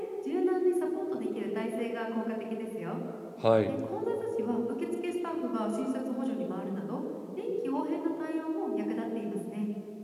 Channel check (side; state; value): both; identical; correlation 1.00